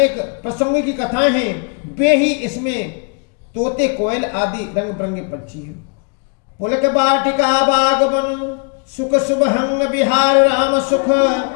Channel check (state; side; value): quieter; right; 37.1 dB